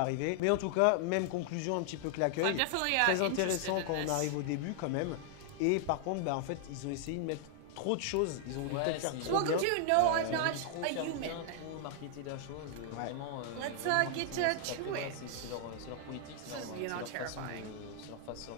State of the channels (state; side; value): different; both; correlation 0.00